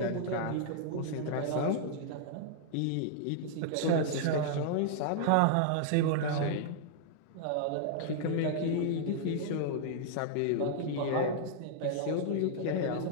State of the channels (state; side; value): different; both; correlation -0.01